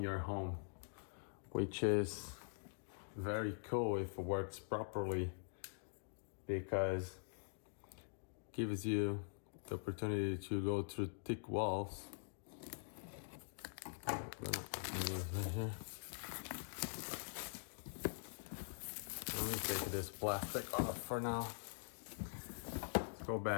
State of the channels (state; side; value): silent; right; digital silence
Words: home, which is very cool if it works properly, because it gives you the opportunity to go through thick walls. I'm gonna open this right here. Let me take this plastic off for now. Let's go